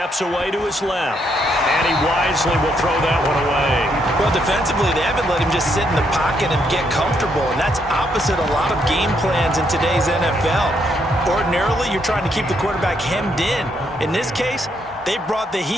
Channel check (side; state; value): both; normal; correlation 0.75